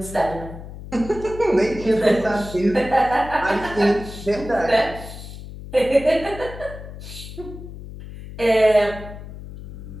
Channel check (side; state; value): left; noise; hum, 12 dB below the sound